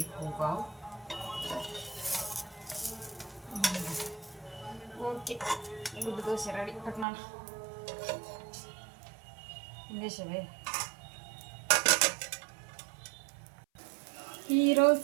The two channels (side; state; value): left; drops out; at 7.1 s